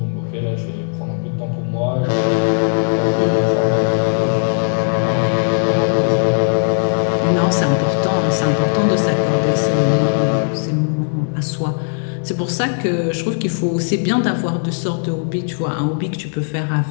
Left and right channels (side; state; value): right; silent; digital silence